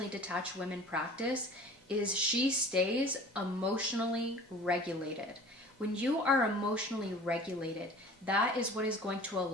detached women practice is she stays emotionally regulated. When you are emotionally regulated, that is what is going to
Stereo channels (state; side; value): normal; both; correlation 0.44